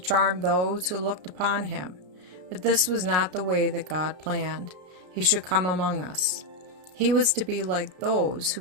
those who looked upon him, but this was not the way that God planned. He should come among us. He was to be like those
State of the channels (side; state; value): left; late; 33 ms